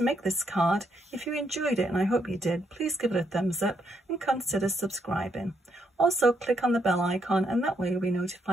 make this card. If you enjoyed it, and I hope you did, please give it a thumbs up and consider subscribing. Also, click on the bell icon and that way you'll be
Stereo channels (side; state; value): both; normal; correlation 0.76